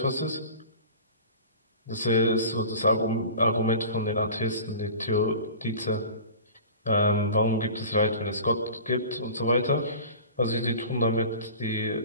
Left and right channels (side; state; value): both; inverted; correlation -0.39